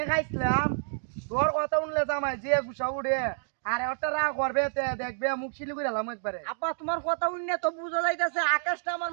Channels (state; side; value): silent; left; digital silence